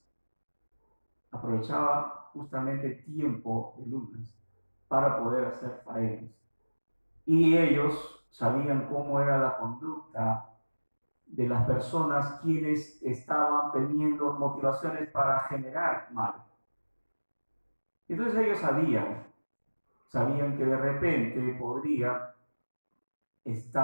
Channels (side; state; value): both; inverted; correlation -1.00